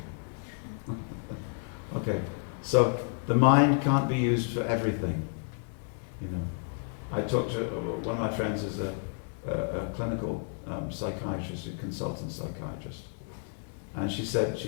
Okay, so the mind can't be used for everything. You know, I talked to one of my friends is a clinical psychiatrist, a consultant psychiatrist, and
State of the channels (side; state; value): right; silent; 57 dB below the other